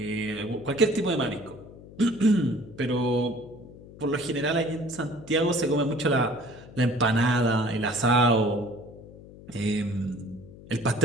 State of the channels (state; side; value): noise; left; hum, 18 dB below the sound